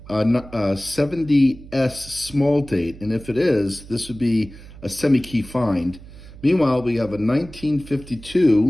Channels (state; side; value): noise; right; hum, 18 dB below the sound